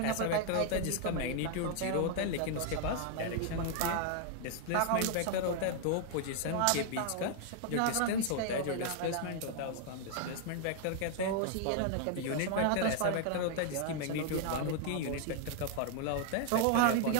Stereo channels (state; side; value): different; both; correlation 0.00